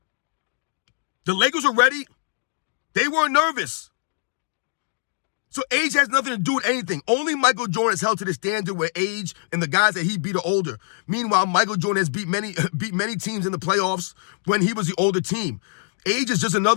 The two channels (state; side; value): silent; right; digital silence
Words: The Lakers were ready. They weren't nervous. So age has nothing to do with anything. Only Michael Jordan is held to the standard where age and the guys that he beat are older. Meanwhile, Michael Jordan has beat many teams in the playoffs when he was the older team. Age is just